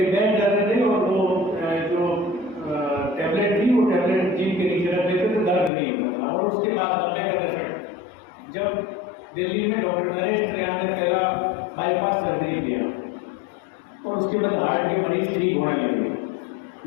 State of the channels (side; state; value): right; drops out; at 5.7 s